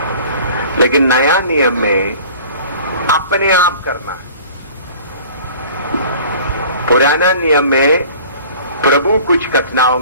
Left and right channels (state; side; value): inverted; both; correlation -0.46